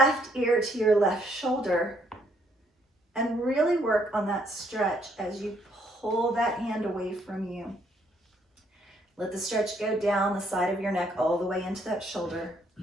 ear to your left shoulder and really work on that stretch as you pull that hand away from you. Let the stretch go down the side of your neck all the way into that shoulder.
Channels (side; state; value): both; normal; correlation 0.69